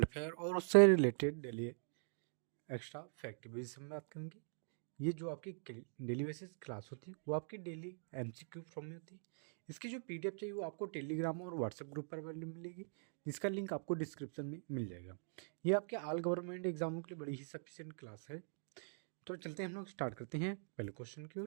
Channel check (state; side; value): silent; left; digital silence